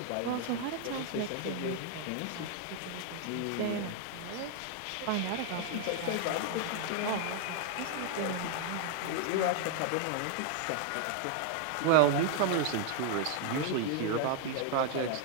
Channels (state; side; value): different; both; correlation 0.00